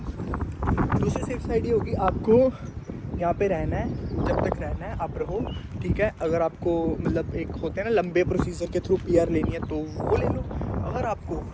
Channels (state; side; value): identical; both; correlation 1.00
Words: दूसरी सेफ साइड ये होगी, आपको यहाँ पे रहना है, जब तक रहना है आप रहो, ठीक है। अगर आपको मतलब एक होते हैं ना लंबे प्रोसीजर के थ्रू पीआर लेनी है तो वो ले लो। अगर आपको